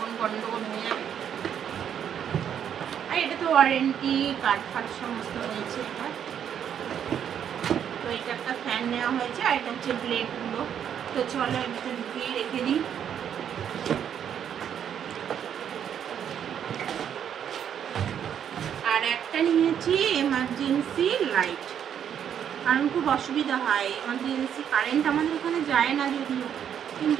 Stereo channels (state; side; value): quieter; left; 8.9 dB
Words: গন্ডগোল হয়ে যাবে। আর এটা তো ওয়ারেন্টি কার্ড ফার্ড সমস্ত রয়েছে এটা। তো এটা একটা ফ্যান নেওয়া হয়েছে, আর এটা হচ্ছে ব্লেডগুলো। তো চলো এটা ঢুকিয়ে রেখে দিই। আর একটা নিয়েছি এমার্জেন্সি লাইট, কারণ খুব অসুবিধা হয় এমার্জেন্সি। কারেন্ট আমাদের এখানে যায় না যদিও,